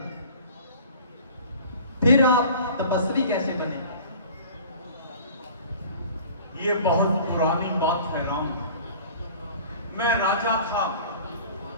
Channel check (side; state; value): both; inverted; correlation -0.44